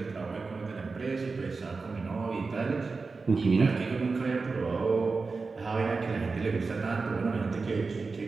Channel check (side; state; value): left; quieter; 4.2 dB